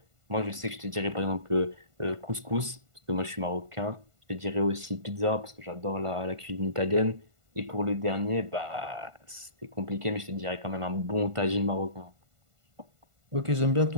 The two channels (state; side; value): late; left; 1.5 ms